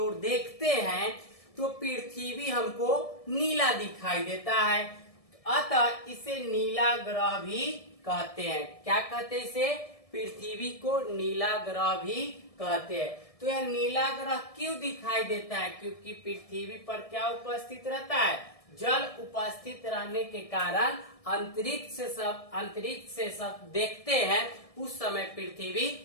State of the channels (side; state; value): right; late; 1.7 ms